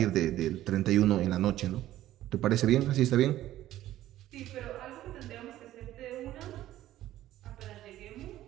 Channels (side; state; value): left; quieter; 13.9 dB